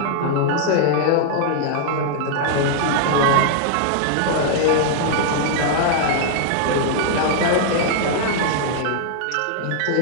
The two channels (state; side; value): different; both; correlation -0.01